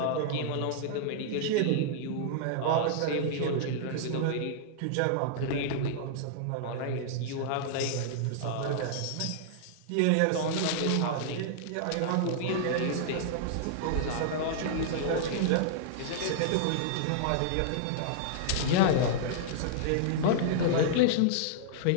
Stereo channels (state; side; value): different; both; correlation -0.01